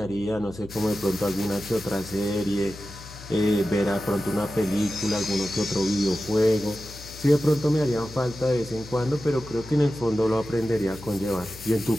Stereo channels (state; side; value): noise; left; hum, 16 dB below the sound